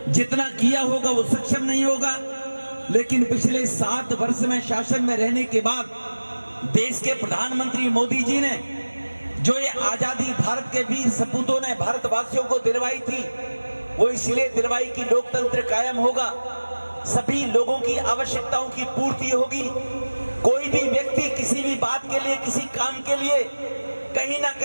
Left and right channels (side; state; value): both; inverted; correlation -1.00